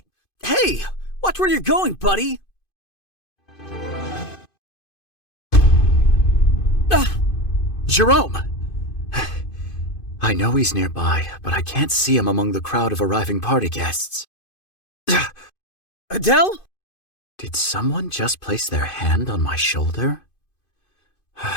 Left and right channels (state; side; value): late; right; 2.5 ms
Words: Watch where you're going, buddy! Jerome! I know he's nearby, but I can't see him among the crowd of arriving party guests. Adele? Did someone just place their hand on my shoulder?